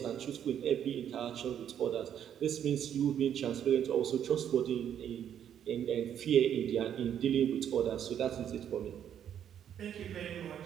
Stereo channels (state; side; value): quieter; left; 9.5 dB